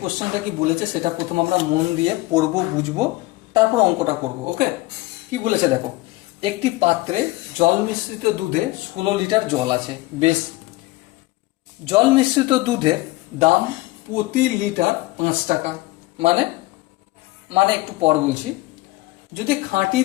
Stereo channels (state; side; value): quieter; right; 20.0 dB